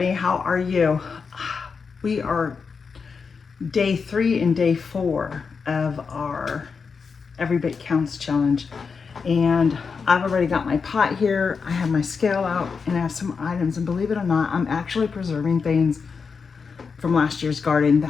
How are you? We are day 3 and day 4 of our Every Bit Counts challenge. And I've already got my pot here. I have my scale out and I have some items. And believe it or not, I'm actually preserving things from last year's garden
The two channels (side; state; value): right; quieter; 5.4 dB